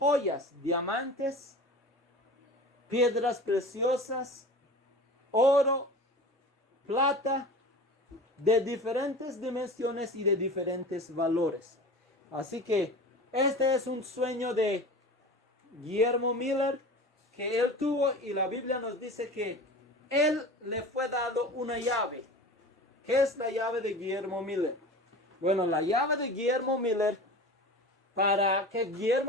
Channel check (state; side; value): normal; both; correlation 0.35